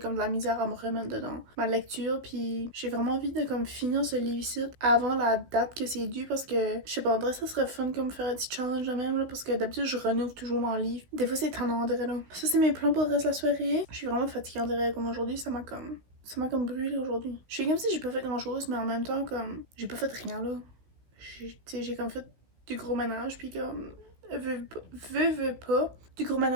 de la misère à me remettre dedans ma lecture. Puis j'ai vraiment envie de comme finir ce livre-ci avant la date que c'est dû parce que je sais pas, André, ça serait fun comme faire un petit challenge de même là parce que d'habitude je renouvelle toujours mon livre. Des fois c'est tannant, André là. Ça c'est mes plans pour le reste de la soirée. Je suis vraiment fatiguée, André, comme aujourd'hui. Ça m'a comme brûlé aujourd'hui. Je suis comme si j'ai pas fait grand chose, mais en même temps comme j'ai pas fait rien là. J'ai comme fait du gros ménage, puis comme veux pas, du gros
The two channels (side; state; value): left; late; 16 ms